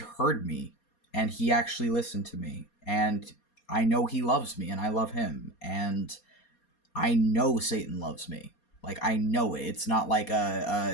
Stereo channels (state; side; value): late; right; 4.2 ms